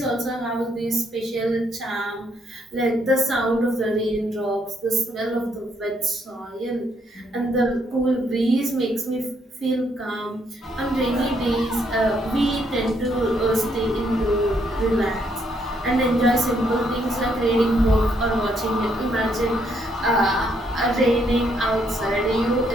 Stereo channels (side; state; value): both; normal; correlation 0.72